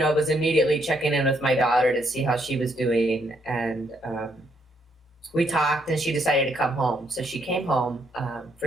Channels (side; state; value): both; normal; correlation 0.73